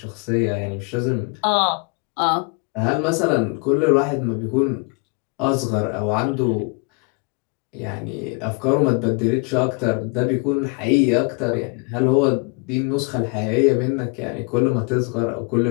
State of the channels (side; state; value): right; quieter; 31.7 dB